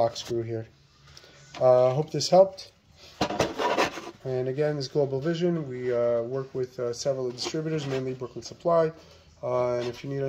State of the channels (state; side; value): identical; both; correlation 1.00